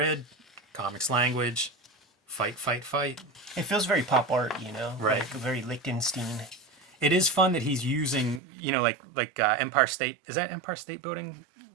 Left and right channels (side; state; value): left; drops out; at 8.4 s